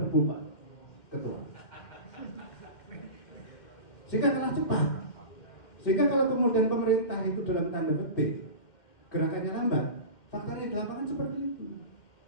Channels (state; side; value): late; right; 2.1 ms